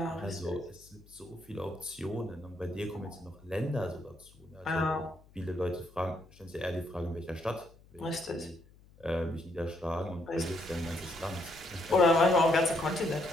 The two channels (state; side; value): noise; left; hum, 25 dB below the sound